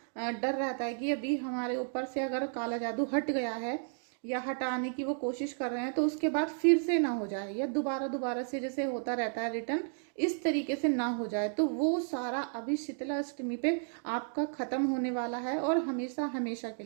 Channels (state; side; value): silent; left; 55 dB below the other